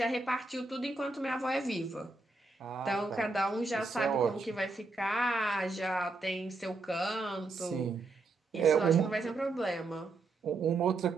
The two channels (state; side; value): quieter; left; 3.4 dB